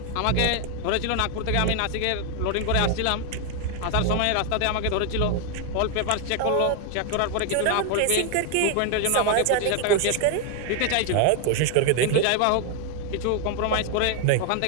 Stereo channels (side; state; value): both; different; correlation 0.01